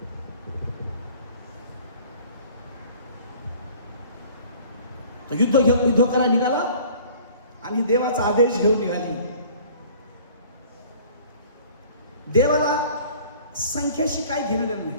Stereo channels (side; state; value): both; inverted; correlation -0.50